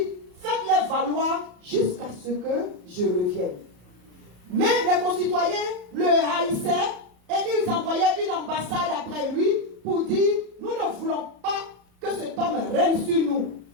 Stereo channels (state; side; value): late; left; 34 ms